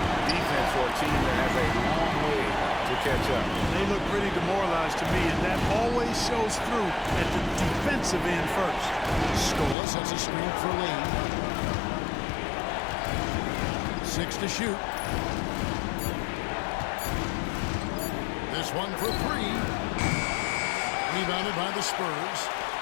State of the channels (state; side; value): drops out; right; at 9.8 s